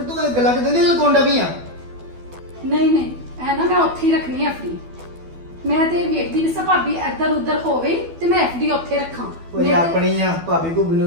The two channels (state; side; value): late; left; 12 ms